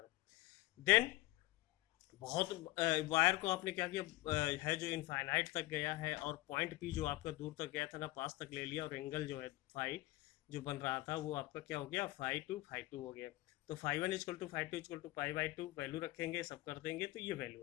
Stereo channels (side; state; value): right; quieter; 19.2 dB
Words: then बहुत वायर को आपने क्या किया है जो इनफाइनाइट तक गया है, और पॉइंट पी जो आपका दूर तक गया था ना, पास तक ले लिया, और एंगल जो है फाई जो बन रहा था वो आपका क्या हो गया, फाई टू हो गया। तो phi one equal to phi two equal to pi by two, value रखेंगे, सब कर देंगे तो ये वैल्यू